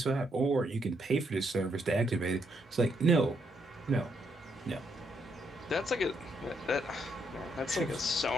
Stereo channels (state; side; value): normal; both; correlation 0.76